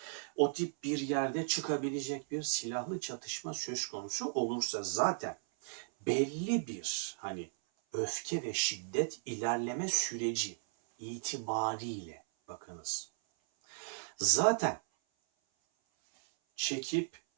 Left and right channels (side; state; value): left; silent; 54 dB below the other